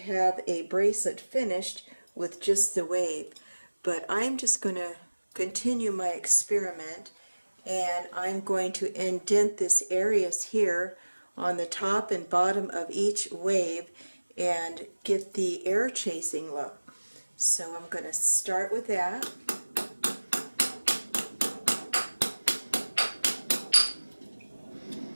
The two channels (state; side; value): inverted; both; correlation -1.00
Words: a bracelet finished with just the wave. But I'm just going to continue my experiment, and I'm going to indent this areas here on the top and bottom of each wave and get the air chasing look. So I'm going to start with that.